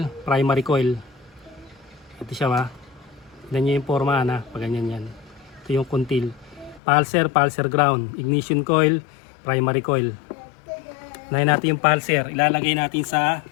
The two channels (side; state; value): right; drops out; at 6.8 s